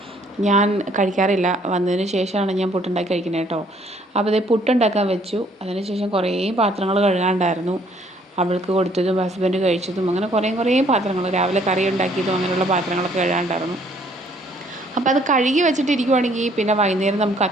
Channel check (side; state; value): both; normal; correlation 0.63